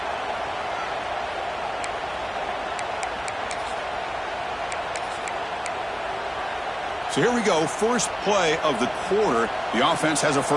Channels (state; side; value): identical; both; correlation 1.00